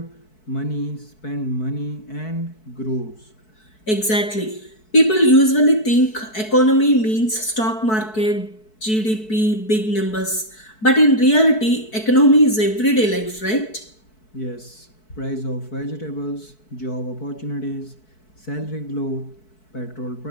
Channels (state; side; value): late; right; 4.6 ms